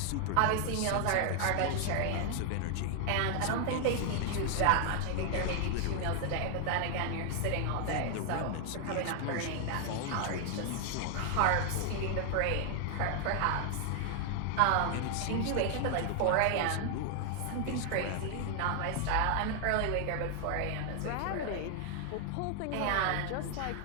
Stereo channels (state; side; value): different; both; correlation 0.00